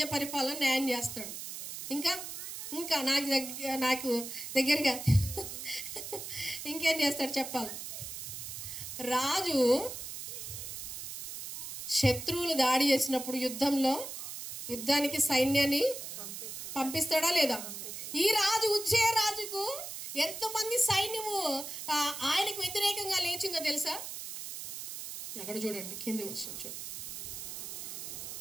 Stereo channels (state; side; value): noise; right; hiss, 8 dB below the sound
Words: పరిపాలన న్యాయం చేస్తాడు. ఇంకా నాకు దగ్గరగా ఇంకేం చేస్తాడు చెప్పాలి? రాజు శత్రువులు దాడి చేసినప్పుడు యుద్ధానికి సైన్యాన్ని పంపిస్తాడా లేదా? ఈ రాజు ఉజ్జయ రాజుకు ఎంతమంది సైన్యము ఆయనకు వ్యతిరేకంగా లేచిందో తెలుసా? అక్కడ చూడండి, కింది వచ్చిన చూద్దాం.